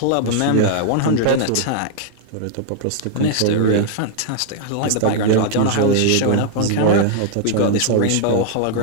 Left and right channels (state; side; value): different; both; correlation -0.01